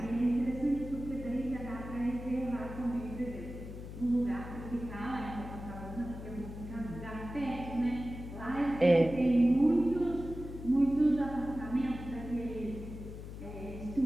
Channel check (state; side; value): noise; left; hum, 10 dB below the sound